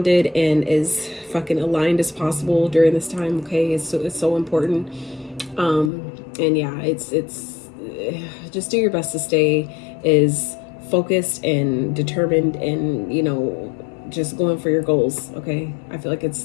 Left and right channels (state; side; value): drops out; right; at 5.9 s